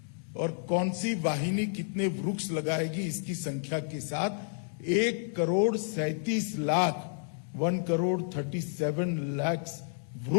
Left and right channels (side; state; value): right; silent; digital silence